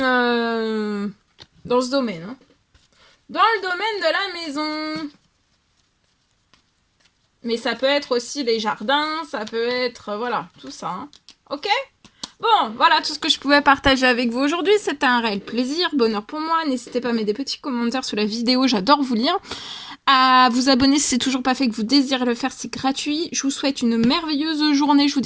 dans ce domaine. Hein. Dans le domaine de la maison. Mais ça peut être aussi les jardins, ça peut être, voilà, tout ça. Hein. Ok ? Bon, voilà tout ce que je pouvais partager avec vous aujourd'hui. C'était un réel plaisir, bonheur pour moi. N'hésitez pas à mettre des petits commentaires sous la vidéo, j'adore vous lire. À vous abonner si c'est toujours pas fait, que vous désirez le faire, c'est gratuit. Je vous souhaite une merveilleuse journée. Je vous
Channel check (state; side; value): identical; both; correlation 1.00